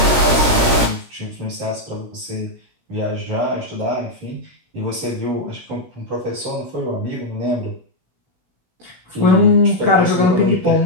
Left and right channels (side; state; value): left; late; 16 ms